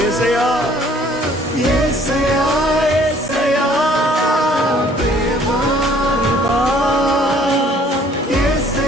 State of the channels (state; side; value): normal; both; correlation 0.58